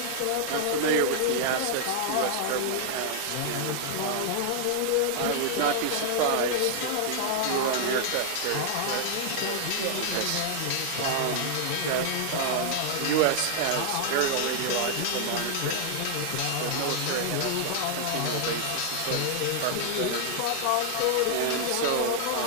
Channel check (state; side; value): different; both; correlation 0.00